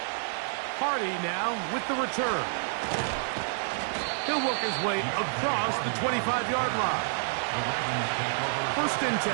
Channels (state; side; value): silent; left; digital silence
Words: Hardy now with the return. He'll work his way across the 25-yard line. First and